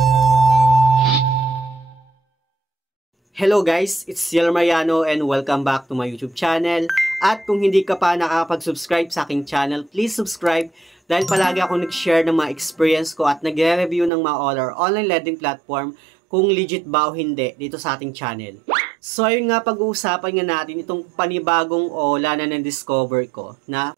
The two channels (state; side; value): drops out; left; at 14.1 s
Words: Hello guys, it's Ciel Mariano and welcome back to my YouTube channel. At kung hindi ka pa nakakapag-subscribe sa aking channel, please subscribe dahil palagi ako nag-share ng mga experience ko at nagre-review ng mga online lending platform kung legit ba o hindi dito sa ating channel. So ayun nga, pag-uusapan nga natin itong panibagong OLA na na-discover ko